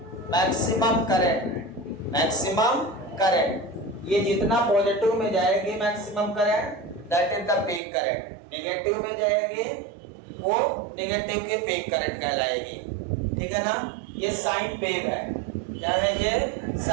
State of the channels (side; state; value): left; drops out; at 7.8 s